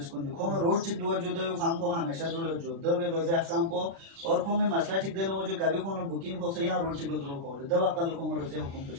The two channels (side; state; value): left; late; 36 ms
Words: को जो खो में रोड चिक दुआ जो दे काम को हमेशा जो दो वे रोज़े हफ्ताम को और खो में मसला चिक देना वो जो कभी खो में बुकिंग हो से यहाँ रोड चिक दो खो दवा कल खो में रोज़े हुकुम